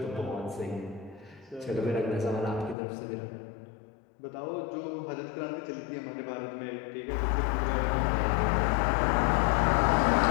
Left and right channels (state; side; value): drops out; right; at 2.8 s